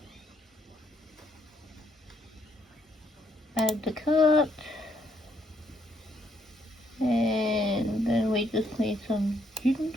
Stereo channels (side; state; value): both; normal; correlation 0.72